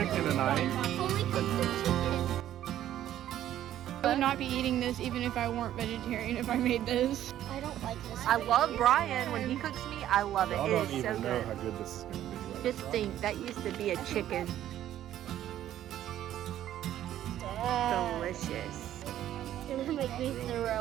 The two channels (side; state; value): left; quieter; 12.1 dB